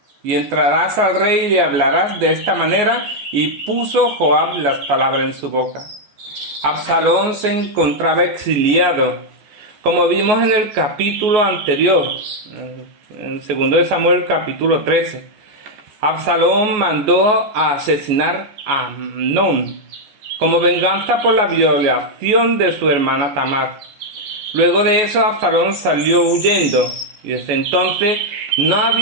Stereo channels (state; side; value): late; left; 14 ms